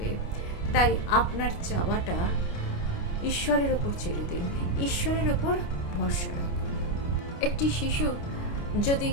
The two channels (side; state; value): right; late; 29 ms